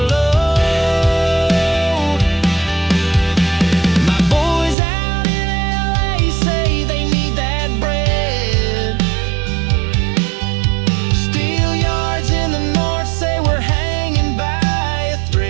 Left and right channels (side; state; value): left; drops out; at 4.8 s